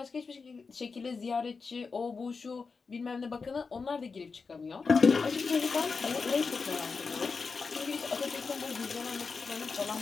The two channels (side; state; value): right; quieter; 4.8 dB